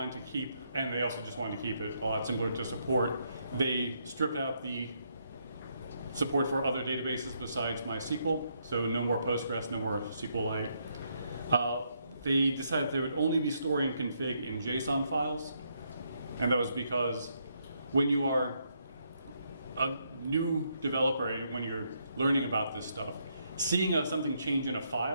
to keep, and they also just wanted to keep it a lot simpler to support. They stripped out the support for other databases besides MySQL, so no more Postgres, no more SQLite. They decided they would only be storing config in JSON files, and that was because when you are a new developer, when you're learning about this stuff, seeing something change in a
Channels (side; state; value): both; inverted; correlation -0.76